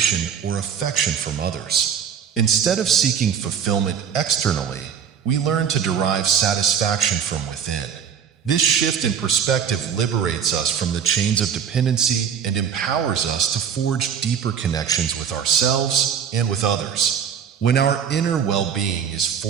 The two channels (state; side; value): quieter; left; 7.8 dB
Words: or affection from others. Instead of seeking fulfillment externally, we learn to derive satisfaction from within. This shift in perspective liberates us from the chains of dependency and empowers us to forge deeper connections with ourselves and with others. When our inner well-being is